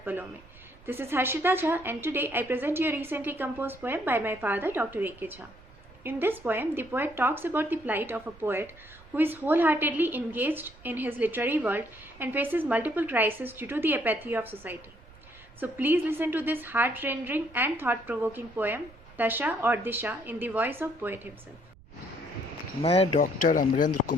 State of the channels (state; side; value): noise; right; rumble, 23 dB below the sound